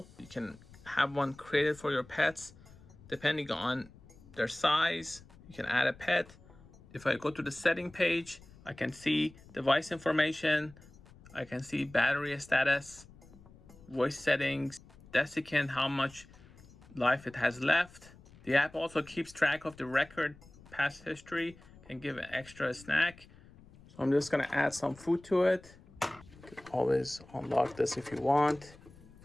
You can have one created for your pets depending on their size. You can add a pet. If I go to the setting page, I can see device information. I can see battery status, voice settings, desiccant, how much life it has left. The app also keeps track of the record past history, can give an extra snack. So I'm just gonna add some food to it. You can always unlock this if you want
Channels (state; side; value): noise; left; rumble, 22 dB below the sound